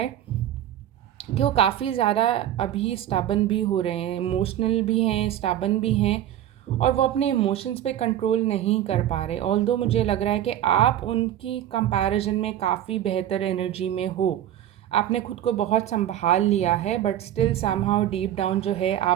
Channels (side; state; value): left; quieter; 11.7 dB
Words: कि वो काफ़ी ज़्यादा अभी स्टबन भी हो रहे हैं, इमोशनल भी हैं, स्टबन भी हैं, और वो अपने इमोशंस पे कंट्रोल नहीं कर पा रहे। ऑल्दो मुझे लग रहा है कि आप उनकी कंपैरिजन में काफ़ी बेहतर एनर्जी में हो, आपने खुद को बहुत संभाल लिया है, but still somehow deep down जो है